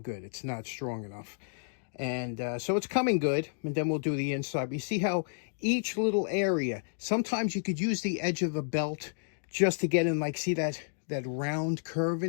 It's not strong enough. And so it's coming good, and then we'll do the inside. But you see how each little area, sometimes you could use the edge of a belt just to get in, like, see that round curve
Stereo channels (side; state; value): right; silent; digital silence